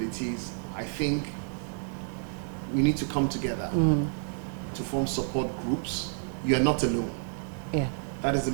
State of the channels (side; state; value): left; silent; digital silence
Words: I think we need to come together to form support groups. You are not alone. Yeah. That is the